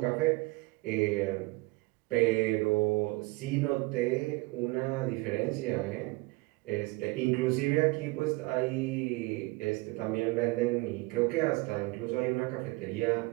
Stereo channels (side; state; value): left; quieter; 23.3 dB